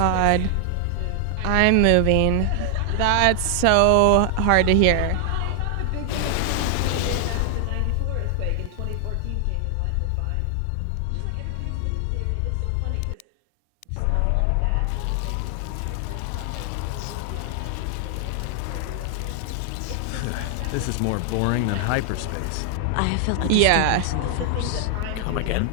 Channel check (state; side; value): different; both; correlation 0.00